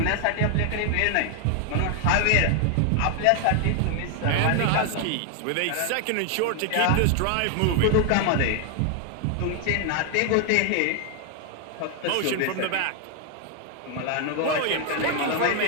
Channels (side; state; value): both; different; correlation 0.00